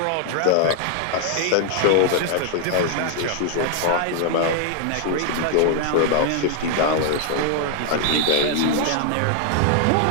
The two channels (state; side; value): different; both; correlation 0.00